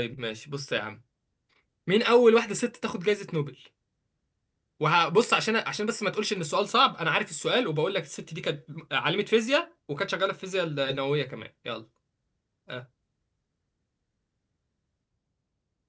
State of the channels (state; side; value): identical; both; correlation 1.00